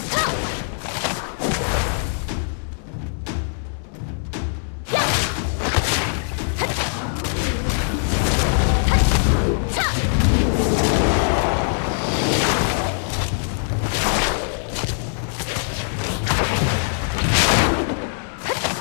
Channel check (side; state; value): right; silent; digital silence